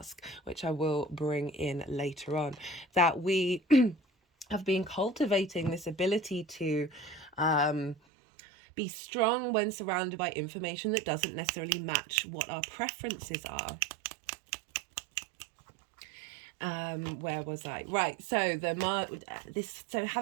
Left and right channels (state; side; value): drops out; left; at 8.0 s